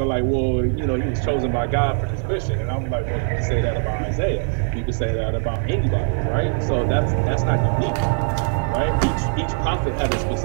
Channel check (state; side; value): silent; left; 57 dB below the other